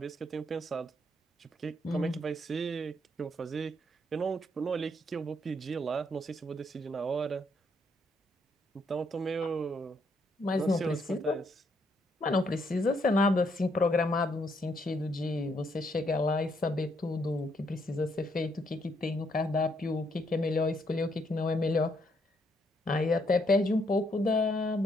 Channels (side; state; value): both; normal; correlation 0.73